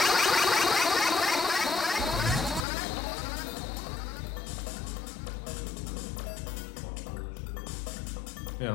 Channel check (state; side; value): drops out; right; at 2.7 s